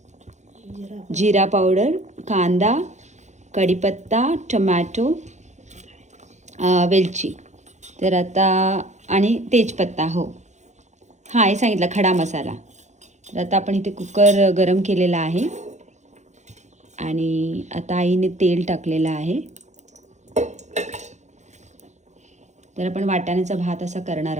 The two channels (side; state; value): left; late; 0.34 ms